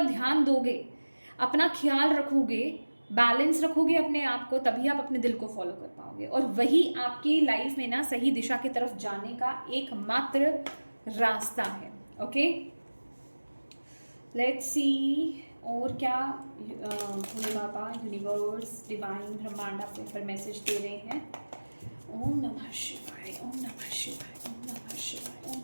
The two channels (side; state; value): both; inverted; correlation -1.00